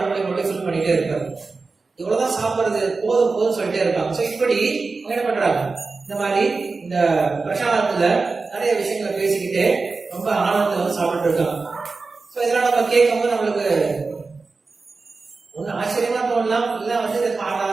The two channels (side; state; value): left; quieter; 4.1 dB